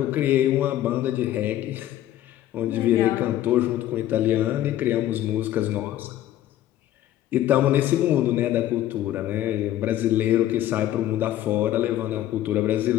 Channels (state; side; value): quieter; right; 13.0 dB